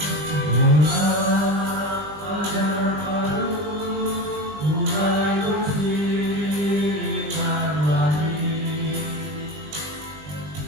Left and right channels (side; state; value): left; late; 20 ms